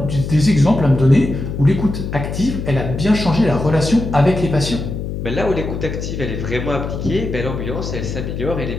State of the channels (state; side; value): noise; left; hum, 5 dB below the sound